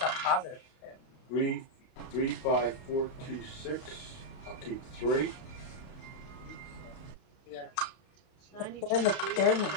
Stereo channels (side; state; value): right; late; 32 ms